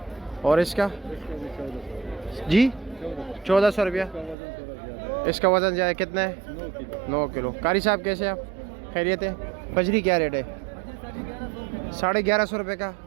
और इसका जी 1400 रुपया। इसका वज़न ज़्यादा कितना है? 9 किलो। कारी साहब कैसे आप, खैरियत है? बजरी क्या रेट है? 1150 रुपये का।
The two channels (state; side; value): drops out; left; at 4.4 s